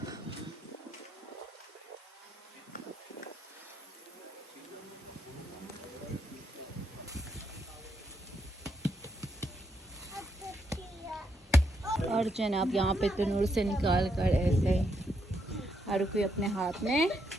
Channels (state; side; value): normal; both; correlation 0.77